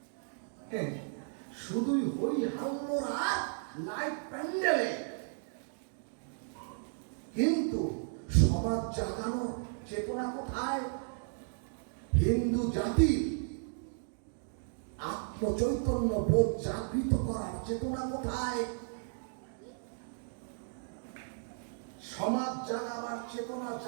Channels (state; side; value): silent; left; digital silence